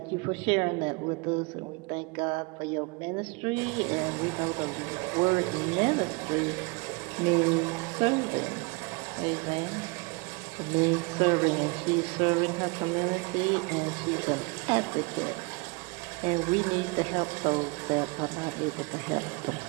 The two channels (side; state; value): left; quieter; 29.0 dB